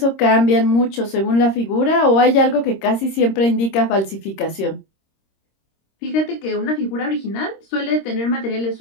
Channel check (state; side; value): late; right; 26 ms